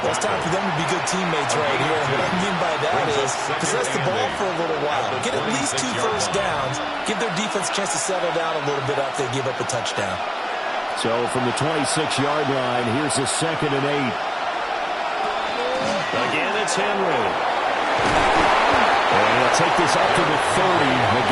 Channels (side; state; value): both; identical; correlation 1.00